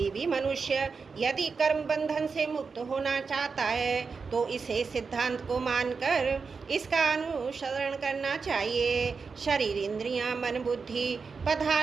भी मनुष्य यदि कर्म बंधन से मुक्त होना चाहता है तो इसे सिद्धांत को मानकर इसका अनुसरण करना चाहिए। शरीर इंद्रियां मन बुद्धि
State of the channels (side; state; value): left; quieter; 5.0 dB